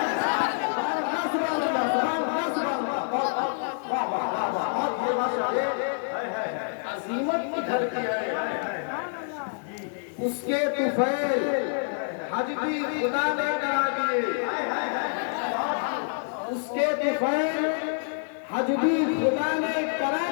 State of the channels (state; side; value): silent; right; 60 dB below the other